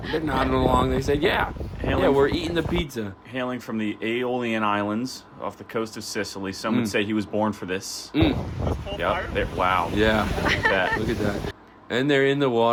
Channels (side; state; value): both; identical; correlation 1.00